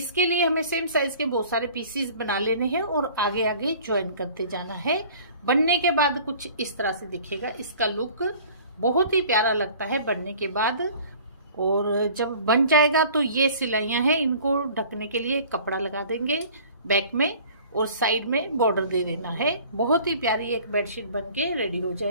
लिए हमें सेम साइज के बहुत सारे पीसीस बना लेने हैं और आगे आगे ज्वाइन करते जाना है। बनने के बाद कुछ इस तरह से दिखेगा। इसका लुक बहुत ही प्यारा लगता है बनने के बाद। और जब बन जाएगा तो ये सिलाइयां हैं, इनको ढकने के लिए कपड़ा लगा देंगे बैक में और साइड में बॉर्डर दे देना है। बहुत ही प्यारी एक बेडशीट बनके रेडी हो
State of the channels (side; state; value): both; inverted; correlation -0.48